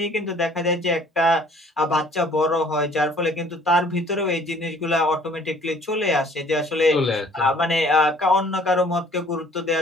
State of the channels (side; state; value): both; normal; correlation 0.55